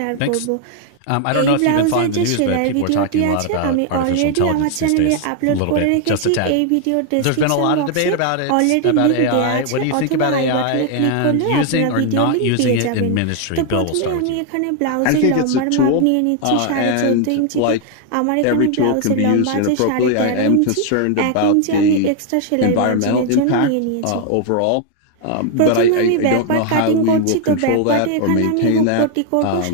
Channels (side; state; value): both; different; correlation 0.00